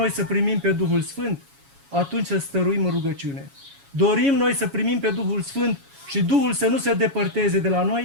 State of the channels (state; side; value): late; left; 7.2 ms